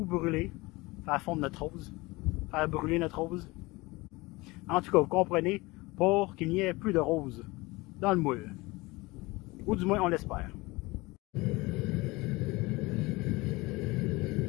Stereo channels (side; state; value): right; quieter; 22.6 dB